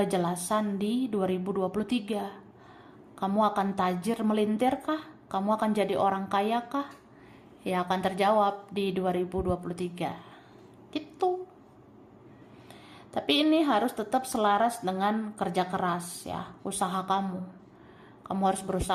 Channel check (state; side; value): identical; both; correlation 1.00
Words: di 2023. Kamu akan tajir melintir kah? Kamu akan jadi orang kaya kah? Ya akan terjawab di 2023. Gitu. Tapi ini harus tetap selaras dengan kerja keras ya, usaha kamu. Kamu harus